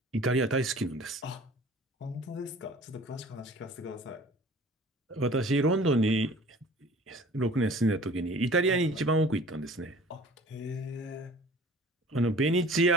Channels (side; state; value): both; normal; correlation 0.47